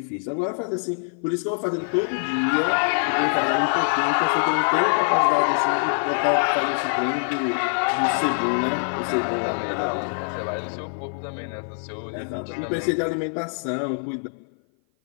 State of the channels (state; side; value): silent; right; 56 dB below the other